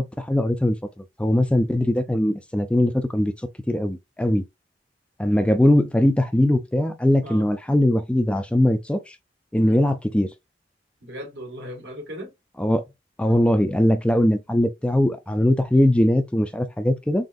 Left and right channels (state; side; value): normal; both; correlation 0.95